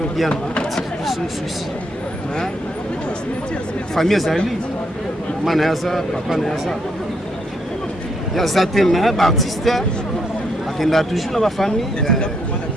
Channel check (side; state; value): both; normal; correlation 0.75